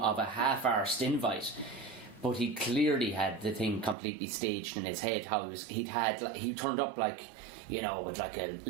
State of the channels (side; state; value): left; drops out; at 4.0 s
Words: a half-arsed invite. But he clearly had the thing completely staged in his head. He turned up like, you know, with like a